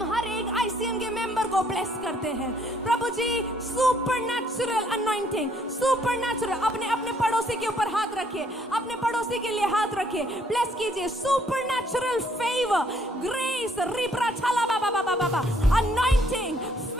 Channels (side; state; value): both; normal; correlation 0.66